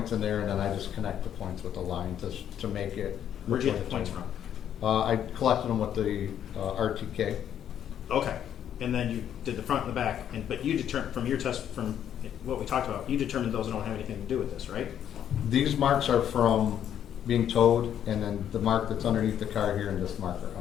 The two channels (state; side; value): quieter; right; 9.8 dB